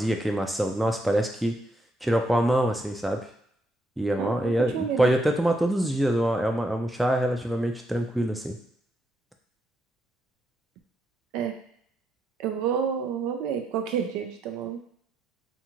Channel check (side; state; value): both; normal; correlation 0.79